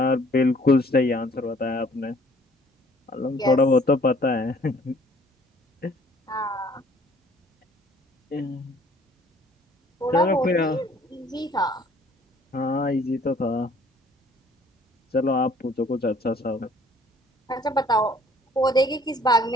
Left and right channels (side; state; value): both; normal; correlation 0.57